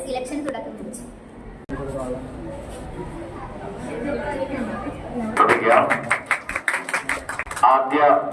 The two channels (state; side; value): identical; both; correlation 1.00